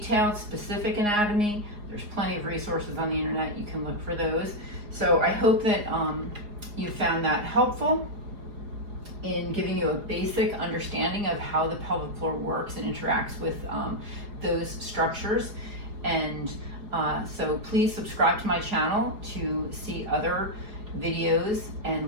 specific anatomy, there's plenty of resources on the internet. You can look for those. So I hope that you found that helpful in giving you a basic understanding of how the pelvic floor works and interacts with those structures. And so please subscribe to my channel to see other videos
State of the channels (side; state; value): left; late; 4.8 ms